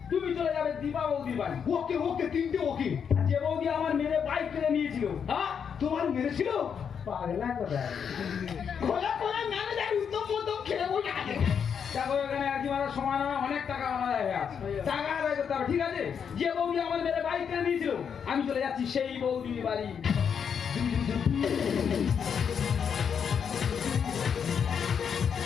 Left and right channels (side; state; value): right; quieter; 7.2 dB